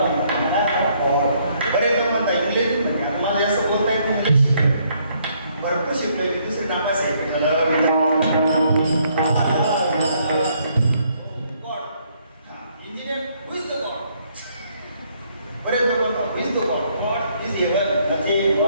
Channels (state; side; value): inverted; both; correlation -0.69